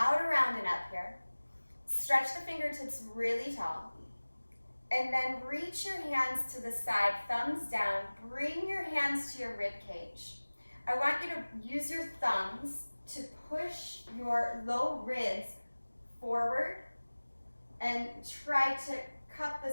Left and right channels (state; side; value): inverted; both; correlation -1.00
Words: around, and up here. Stretch the fingertips really tall. And then reach your hands to the side, thumbs down. Bring your hands to your rib cage. I want you to use your thumbs to push your low ribs forward and try to cup the